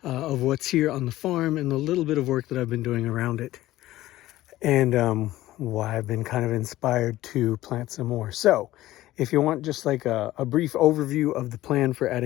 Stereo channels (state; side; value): quieter; right; 15.8 dB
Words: of what's here on the farm and the little bit of work that I've been doing around it, and why I've been kind of inspired to plant some more. So if you want just like a brief overview of the plan for